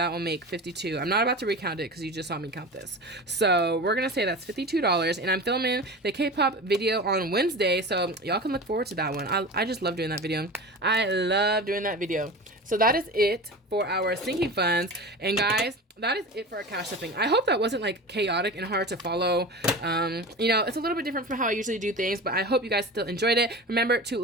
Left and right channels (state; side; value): normal; both; correlation 0.31